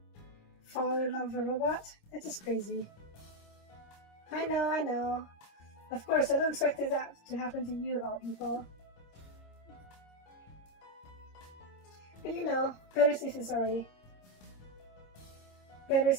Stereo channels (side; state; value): right; late; 26 ms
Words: Fall in love with a robot? That's just crazy. I know. Of course, I don't expect that to happen to you of all people. But you know, better safe than sorry. Better